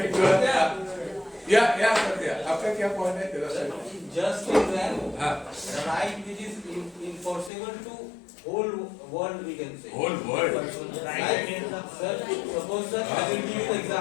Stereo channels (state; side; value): drops out; right; at 7.5 s